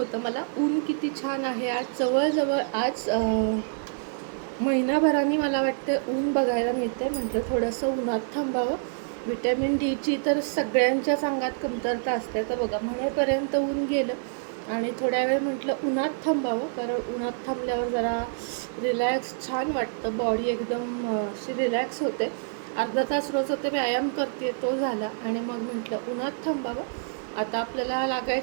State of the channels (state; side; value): silent; left; 56 dB below the other